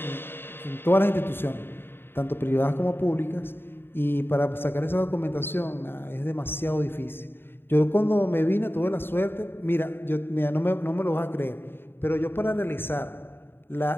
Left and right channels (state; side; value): late; right; 0.10 ms